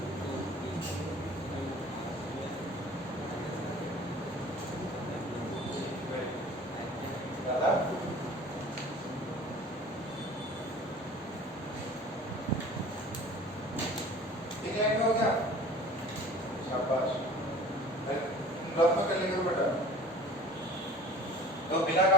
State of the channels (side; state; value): both; normal; correlation 0.45